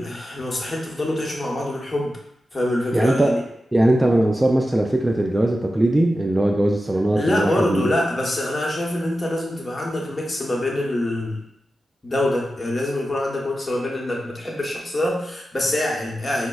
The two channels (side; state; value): both; normal; correlation 0.92